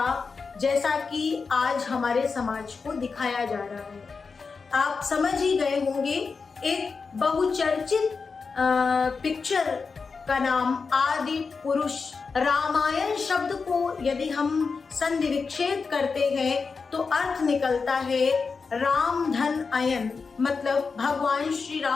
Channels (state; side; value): quieter; right; 4.9 dB